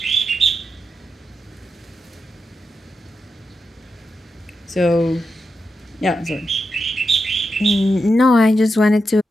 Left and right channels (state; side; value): normal; both; correlation 0.87